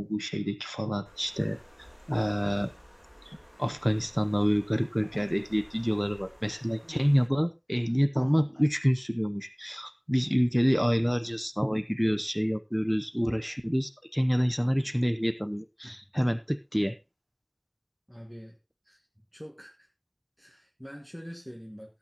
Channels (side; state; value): both; identical; correlation 1.00